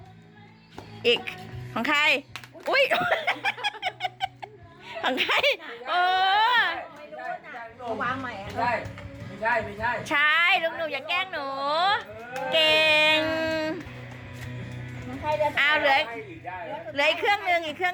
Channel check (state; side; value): identical; both; correlation 1.00